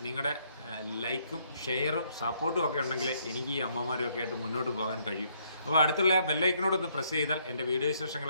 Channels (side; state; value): both; inverted; correlation -0.69